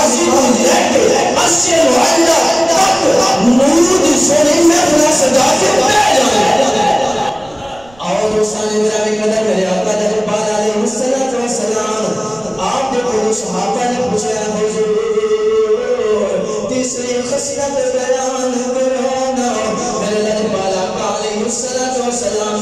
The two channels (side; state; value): right; noise; rumble, 27 dB below the sound